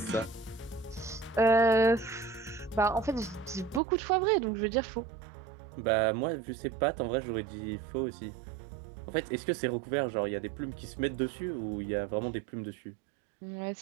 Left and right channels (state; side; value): drops out; left; at 3.8 s